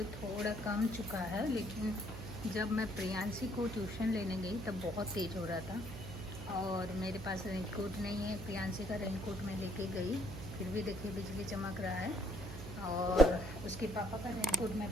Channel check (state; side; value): noise; right; hum, 9 dB below the sound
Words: थोड़ा कम चुका है, लेकिन जब मैं प्रियांशी को ट्यूशन लेने गई तब बहुत तेज़ हो रहा था और मेरे पास रेनकोट नहीं है। प्रियांशी का रेनकोट मैं लेके गई, फिर भी देखिए बिजली चमक रहा है और उसके पापा का रेनकोट मैं